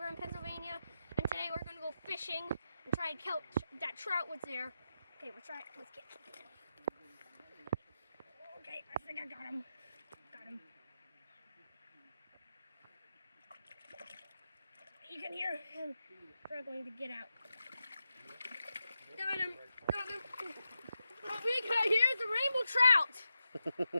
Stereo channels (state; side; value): inverted; both; correlation -0.88